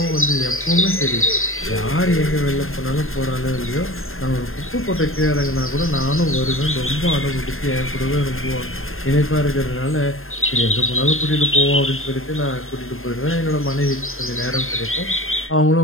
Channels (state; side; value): late; right; 0.61 ms